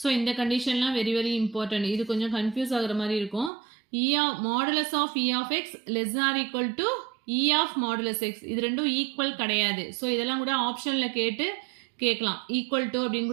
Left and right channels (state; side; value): drops out; left; at 3.5 s